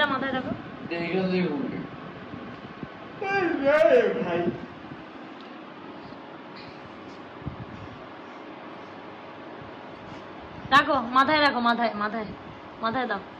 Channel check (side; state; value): both; identical; correlation 1.00